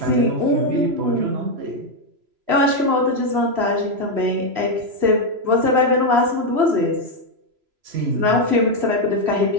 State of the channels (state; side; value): late; left; 3.0 ms